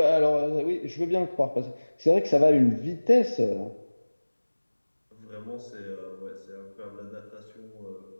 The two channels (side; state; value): both; inverted; correlation -1.00